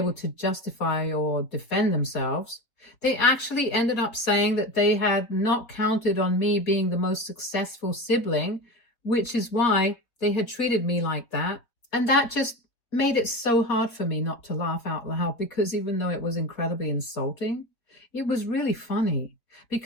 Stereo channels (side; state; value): right; late; 4.2 ms